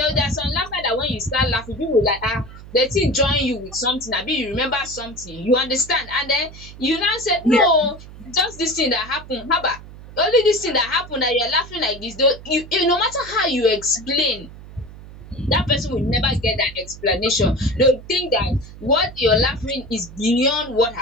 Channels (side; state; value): right; noise; hum, 16 dB below the sound